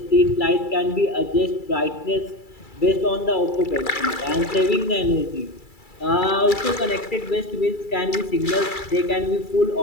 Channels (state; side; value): late; right; 2.3 ms